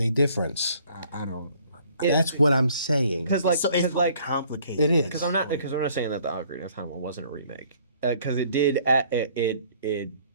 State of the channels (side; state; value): both; inverted; correlation -0.59